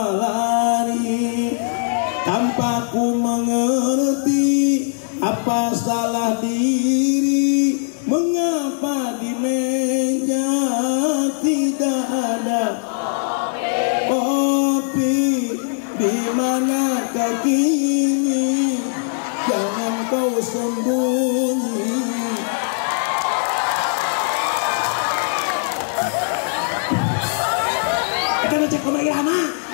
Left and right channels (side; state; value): right; silent; digital silence